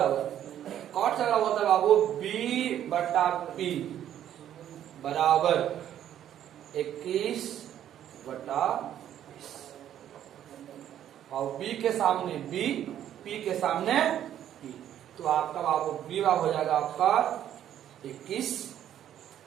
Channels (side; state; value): left; quieter; 10.9 dB